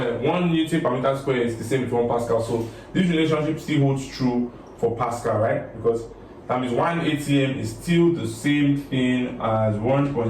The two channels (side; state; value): both; identical; correlation 1.00